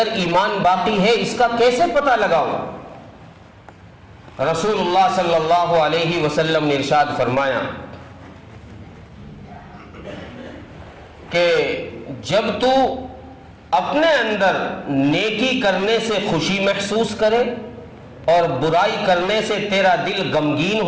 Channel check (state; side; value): identical; both; correlation 1.00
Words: ایمان باقی ہے، اس کا کیسے پتہ لگاؤں؟ رسول اللہ صلی اللہ علیہ وسلم نے ارشاد فرمایا کہ جب تو اپنے اندر نیکی کرنے سے خوشی محسوس کرے اور برائی کرنے سے تیرا دل غمگین